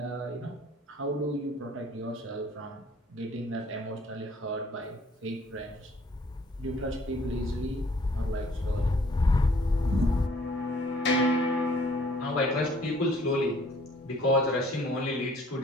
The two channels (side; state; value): both; normal; correlation 0.59